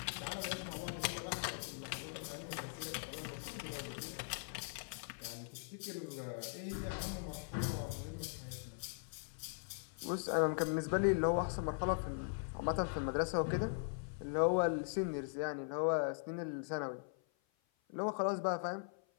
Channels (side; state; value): right; silent; 51 dB below the other